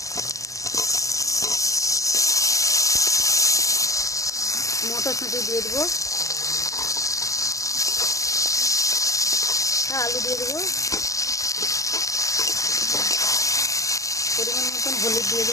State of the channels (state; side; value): late; right; 0.16 ms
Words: মটরশুঁটি দিয়ে দেবো, আলু দিয়ে দেবো, পরিমাণ মতন হলুদ দিয়ে